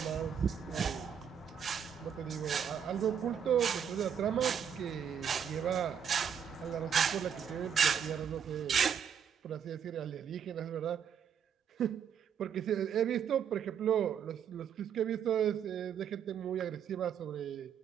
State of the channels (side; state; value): left; quieter; 8.0 dB